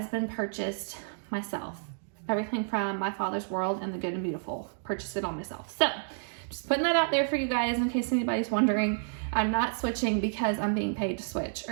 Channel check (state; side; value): silent; left; digital silence